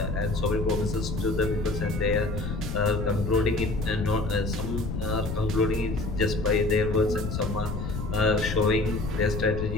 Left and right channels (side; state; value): left; noise; rumble, 4 dB below the sound